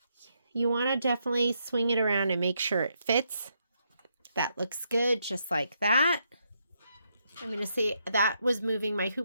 you want to definitely swing it around and make sure it fits. That looks good, just like that. I'm going to say that was moving my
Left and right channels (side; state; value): both; inverted; correlation -0.78